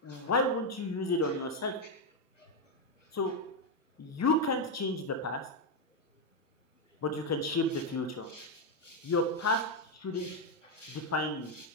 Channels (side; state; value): both; normal; correlation 0.03